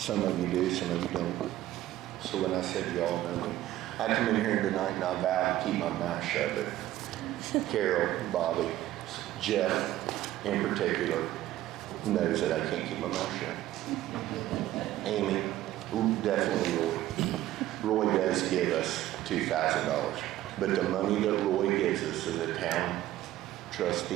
of you do, some of you don't. So when I said you all know me, I come in here tonight and I vow to keep my mouth shut. But Carol, Bobby, Jeff in particular knows that I can't keep my mouth shut. Amy, definitely Roy. Roy does give us $2,000. But the money that Roy gives us as a town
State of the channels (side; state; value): left; quieter; 14.2 dB